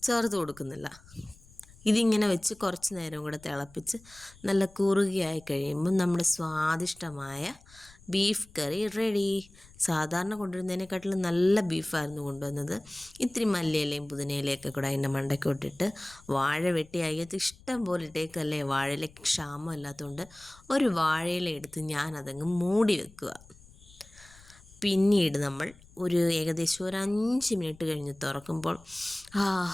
ചേർത്ത് കൊടുക്കുന്നില്ല. ഇതിങ്ങനെ വെച്ച് കുറച്ച് നേരം കൂടെ തിളപ്പിച്ച് നല്ല കുറുകിയായി കഴിയുമ്പോൾ നമ്മുടെ സ്വാദിഷ്ടമായ ബീഫ് കറി റെഡി. സാധാരണ കൊണ്ടുവരുന്നതിനെക്കാട്ടിലും നല്ല ബീഫായിരുന്നു കൊണ്ടുവന്നത്. ഇത്തിരി മല്ലിയിലയും പുതിനയിലയൊക്കെ കൂടെ അതിൻ്റെ മണ്ടയ്ക്ക് ഇട്ടിട്ട് വാഴ വെട്ടി അയ്യത്ത് ഇഷ്ടം പോലെ ഇട്ടേക്കല്ലേ. വാഴയിലേക്ക് ക്ഷാമം അല്ലാത്തതുകൊണ്ട് ഒരു വാഴയില എടുത്ത് ഞാനതങ്ങ് മൂടി വെക്കുക. പിന്നീട് നമ്മൾ ഒരു ഏകദേശം ഒരു 5 മിനിറ്റ് കഴിഞ്ഞ് തുറക്കുമ്പോൾ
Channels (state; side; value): noise; left; rumble, 24 dB below the sound